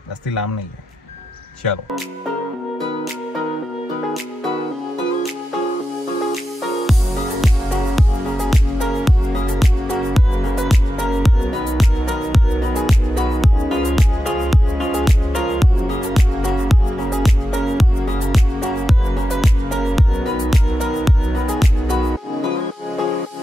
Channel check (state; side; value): normal; both; correlation 0.90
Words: जास्ती लांब नाही आहे. चलो.